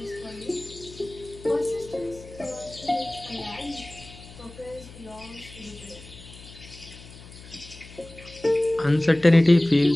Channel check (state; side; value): noise; left; hum, 18 dB below the sound